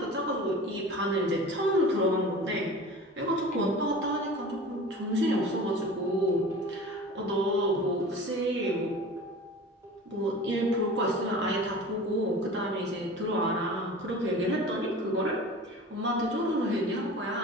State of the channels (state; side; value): normal; both; correlation 0.38